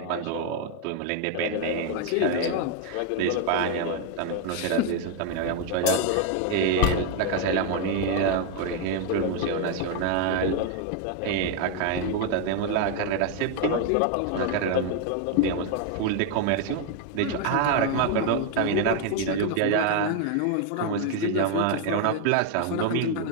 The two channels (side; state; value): both; different; correlation 0.01